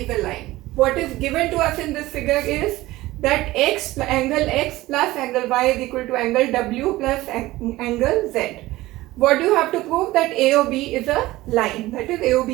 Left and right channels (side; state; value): left; quieter; 17.9 dB